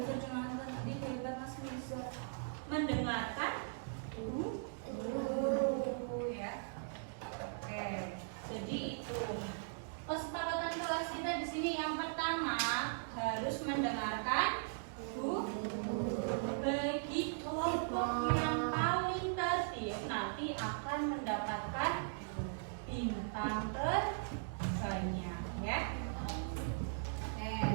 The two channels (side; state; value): left; silent; digital silence